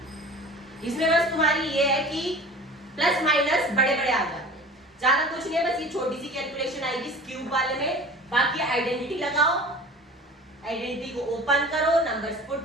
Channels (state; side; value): normal; both; correlation 0.40